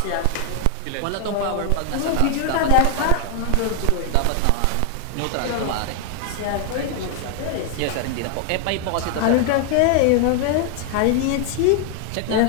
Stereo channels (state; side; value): different; both; correlation 0.00